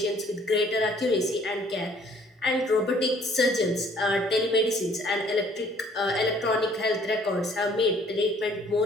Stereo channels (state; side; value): normal; both; correlation 0.58